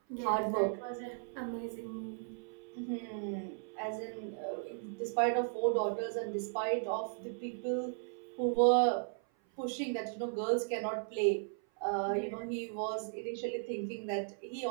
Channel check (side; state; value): left; silent; 54 dB below the other